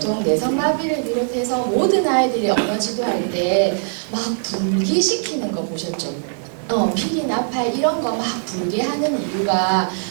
뇌성마비를 비롯해서 모든 아이들이 언어 지도할 때 막 불기시키는 거 보셨죠? 피리, 나팔 이런 거 막 불게 하는 이유가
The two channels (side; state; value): left; silent; digital silence